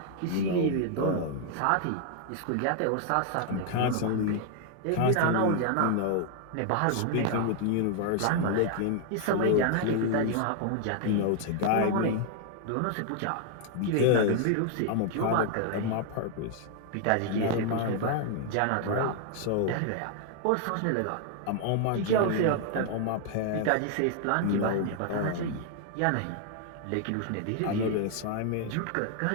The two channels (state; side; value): different; both; correlation 0.00